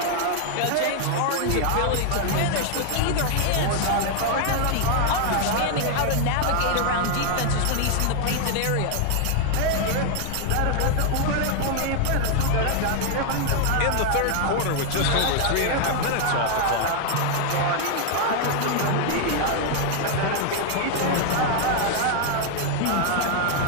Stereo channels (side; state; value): both; different; correlation 0.00